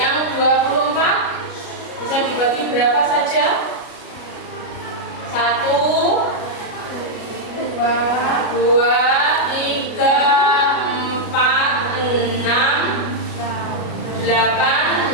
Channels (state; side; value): late; right; 33 ms